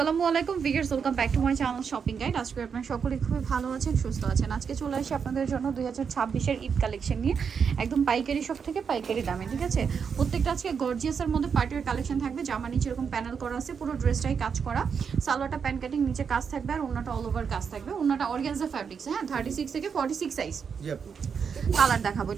আলাইকুম viewers, welcome back to my channel shopping guide. আজকে আপনারা সকলেই খুবই ভালো আছেন, সুস্থ আছেন। আজকে চলে আসি আপনাদের জন্য 2026-এর ঈদ কালেকশন নিয়ে, একদম পাইকারি শপ থেকে পাইকারি দামে, ঠিক আছে। প্রত্যেকটা আজকে গর্জিয়াসের মধ্যে পার্টির কালেকশন থাকবে। জামা নিচে এরকম প্যানেল করা আছে, পুরো ড্রেসটাই কাজ করা। সালোয়ারটা প্যান কাটিং, নিচে কাজ থাকবে, আর ওন্নাটা অল ওভার কাজ থাকবে। ওন্নাটা অর্গানজা ফ্যাব্রিক্স, হ্যাঁ, 36 থেকে 46 সাইজ। কালার দেখাবো,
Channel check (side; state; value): left; quieter; 6.5 dB